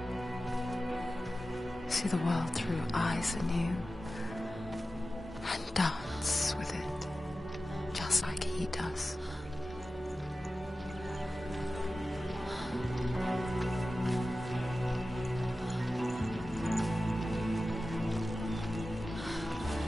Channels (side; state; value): both; normal; correlation 0.94